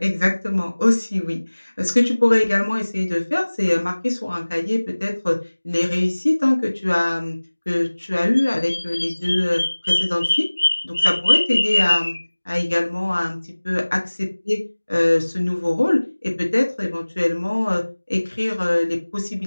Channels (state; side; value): inverted; both; correlation -1.00